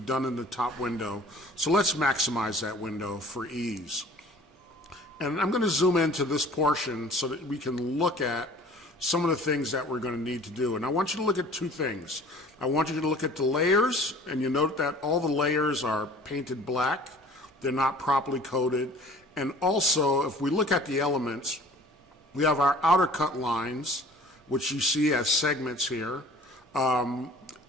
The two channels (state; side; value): normal; both; correlation 0.49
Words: in the top window, so let's maximize that window for ease. And I'm going to zoom into this portion so that we can look at some of the things that we're going to need to do. And I want you to look at two things. I want you to look at the layers, and you note that all the layers are painted black. They're not properly coded. And also, if we look at the elements, we have our outer cut lines, which you see as segments here.